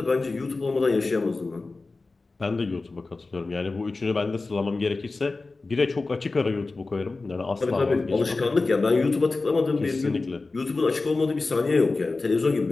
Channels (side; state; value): right; quieter; 3.6 dB